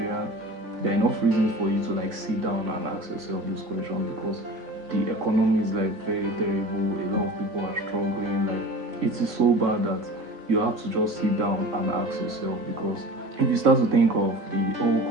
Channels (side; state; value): left; late; 3.0 ms